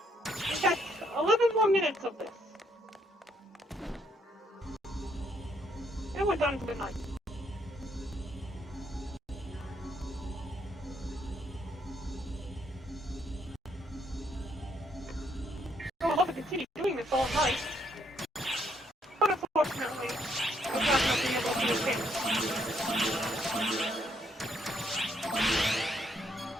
We got 11 more minutes of this. And we're done for the night. I would love to continue doing this all night. But unfortunately, I'm not going to be able to do it.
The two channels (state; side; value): normal; both; correlation 0.72